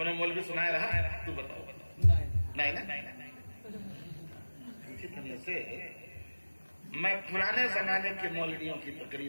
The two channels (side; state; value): both; inverted; correlation -1.00